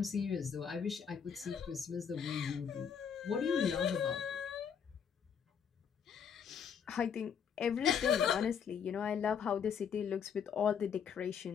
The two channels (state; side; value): quieter; right; 7.3 dB